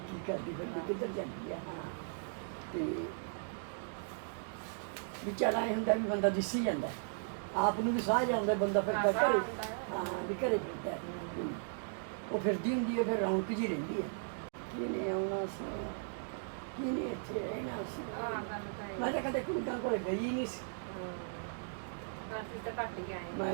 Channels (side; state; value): left; silent; digital silence